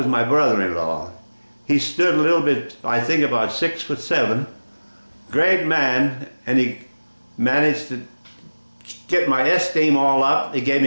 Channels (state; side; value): inverted; both; correlation -1.00